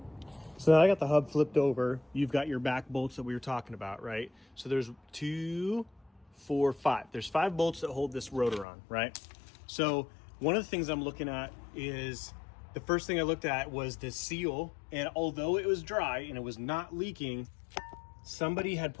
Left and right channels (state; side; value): drops out; right; at 8.7 s